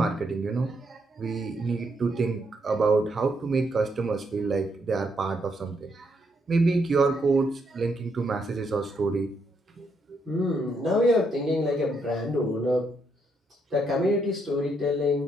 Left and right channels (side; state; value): both; normal; correlation 0.76